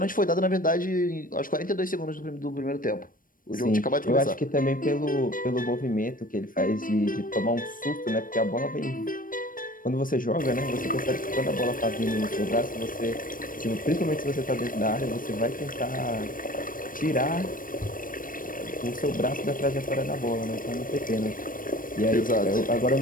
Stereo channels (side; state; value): right; late; 0.40 ms